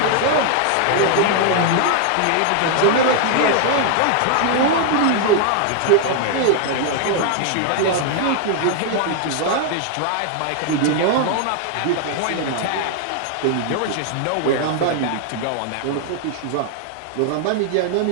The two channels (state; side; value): different; both; correlation 0.00